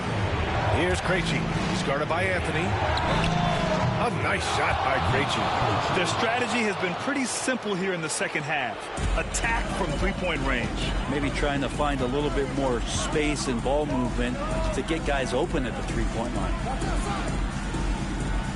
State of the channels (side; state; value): both; identical; correlation 1.00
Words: Here's Krejci. He's guarded by Anthony. A nice shot by Krejci. Their strategy has been pretty simple here in the second half. Attack from 3-point range. Maybe trying to find a little bit more space and ball movement to get guys open at the 3-point line.